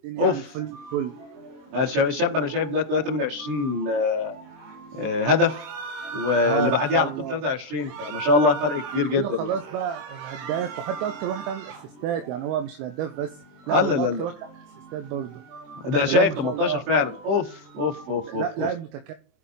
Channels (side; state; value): left; late; 23 ms